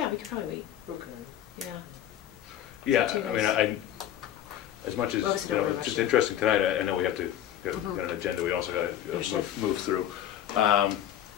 we could probably wait. Okay. Yeah. Yeah, Too I mean, nice. as much as Obviously don't it's rush just it. interesting tonight. I know we have to get Mhm. an agenda. We also got to Understood. move through.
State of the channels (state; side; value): quieter; right; 11.3 dB